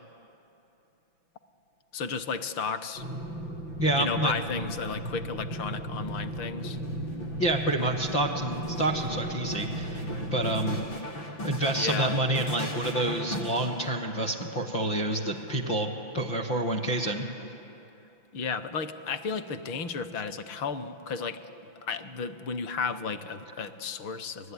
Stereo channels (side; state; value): right; late; 6.0 ms